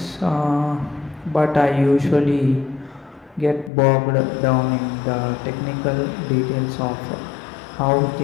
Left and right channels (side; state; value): right; drops out; at 3.7 s